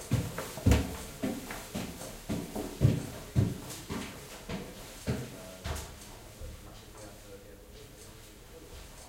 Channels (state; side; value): identical; both; correlation 1.00